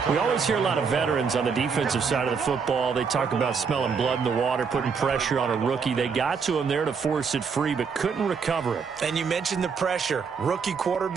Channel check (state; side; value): quieter; left; 5.8 dB